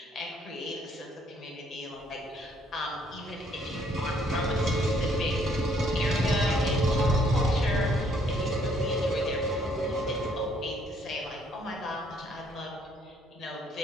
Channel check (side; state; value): both; normal; correlation 0.66